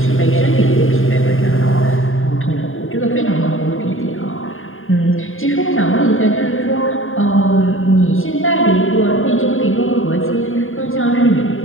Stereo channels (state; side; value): late; right; 0.59 ms